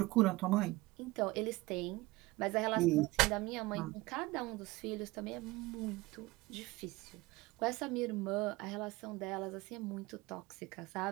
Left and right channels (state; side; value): quieter; left; 20.9 dB